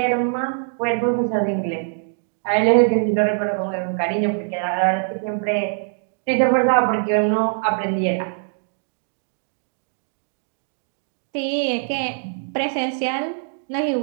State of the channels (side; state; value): left; silent; digital silence